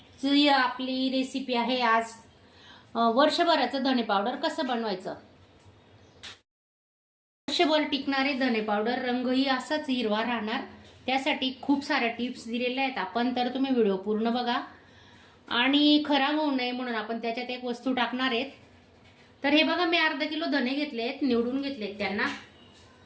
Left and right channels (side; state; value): both; identical; correlation 1.00